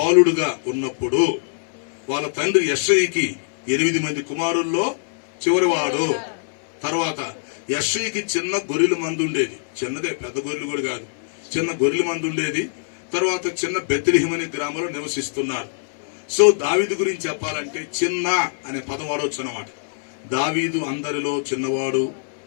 ఉన్నప్పుడు వాళ్ళ తండ్రి యెష్షయికి 8 మంది కుమారుల్లో చివరివాడు. తర్వాత యెష్షయికి చిన్న గొర్రెల మంది ఉండేది, చిన్నదే, పెద్ద గొర్రెలు కూడా కాదు, చిన్న గొర్రెల మంది ఉండేది. తర్వాత చిన్న బెత్లెహేము అనే గ్రామంలో నివసిస్తున్నారు. సో దావీదు గురించి చెప్పాలంటే చిన్న అనే పదం వాడవచ్చు అన్నమాట. దావీదు అందరిలో చిన్నవాడు,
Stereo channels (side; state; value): right; silent; 61 dB below the other